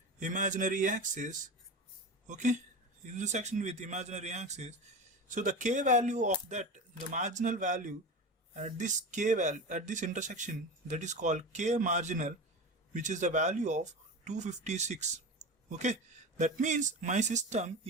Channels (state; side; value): normal; both; correlation 0.27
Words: imaginary axis. Okay, intersection with imaginary axis. So the k value of that, the marginal value at this k value at this intersection, that is called k marginal, which is the value of 256. Okay, that means my system